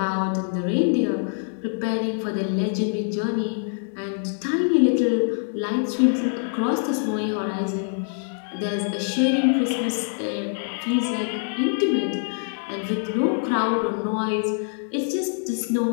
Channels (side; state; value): right; silent; digital silence